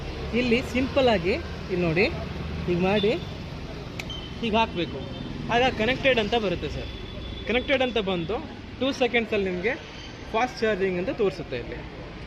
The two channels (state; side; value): identical; both; correlation 1.00